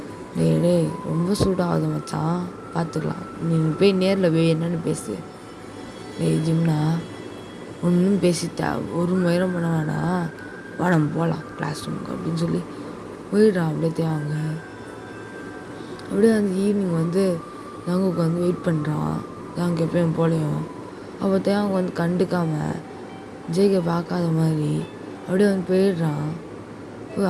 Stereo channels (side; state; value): both; identical; correlation 1.00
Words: டே ரொம்ப சூடாகுது மச்சான், பார்த்துக்கலாம், நீ போய் நேரில் போய் என்னென்னு பேசு. ஜிம்னா ஒன்றும் பேசிட்டா ஒரு மயிரம் பண்ண வேணாம், வா நம்ம போகலாம் கிளாஸ் ரூமுக்கு அப்படின்னு சொல்லி போயிடுறான். அப்படியே தேவாங்க அப்படியே அந்த ஈவினிங் வந்து ஜங்குக்கு வந்து வெயிட் பண்ணுறான். தேங்க எப்பயும் போலையும் அப்போ தேவாங்க வந்து கண்டுக்காமல் ஜேகே பார்க்காத மாதிரி அப்படியே வந்து போயிடுறான்.